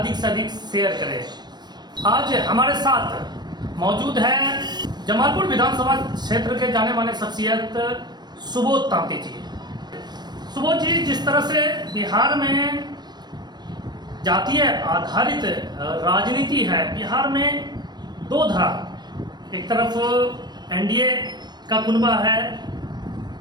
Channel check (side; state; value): left; late; 0.21 ms